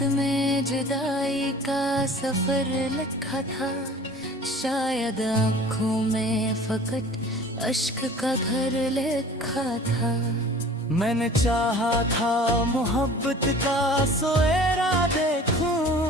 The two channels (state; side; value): normal; both; correlation 0.45